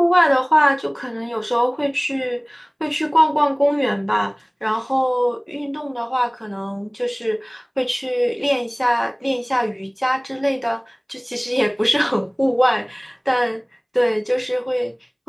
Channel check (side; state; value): both; identical; correlation 1.00